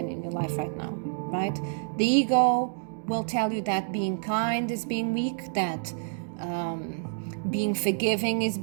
in your life right now, right? The ego will tell you that being kind is being weak, that being forgiving is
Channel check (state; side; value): silent; left; digital silence